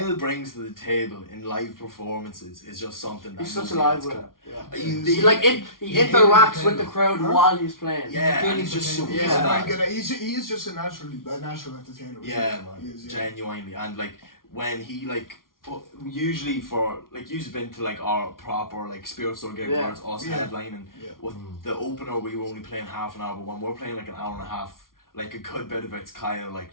brings to the table in live performances is just something that He's such a nobody live else with can. it. Yeah. He- He he interacts hit with the the crowd Huh? while he's playing. Yeah, and he's just so Yeah. good He's at very that. good at. He is just a natural entertainer. Yeah, He man, is, yeah. genuinely, and like when he like usually for like you've been to like our proper like Spirit Store gig Yeah. where it's us Yeah. headlining. Yeah. With the opener, we were only playing half an hour, but when we're playing like an hour and a half, like a good bit of it's Kyle like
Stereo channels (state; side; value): late; right; 0.92 ms